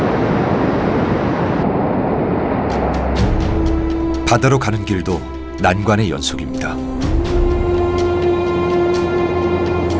바다로 가는 길도 난관의 연속입니다.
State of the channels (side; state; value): both; identical; correlation 1.00